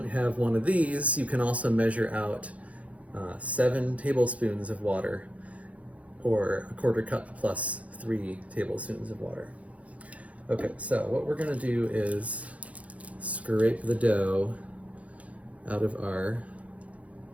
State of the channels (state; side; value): late; left; 0.066 ms